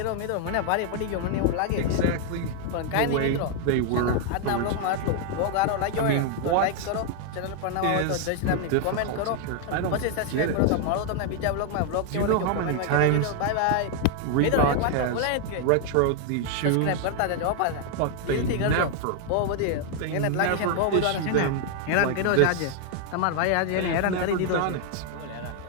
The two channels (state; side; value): different; both; correlation 0.00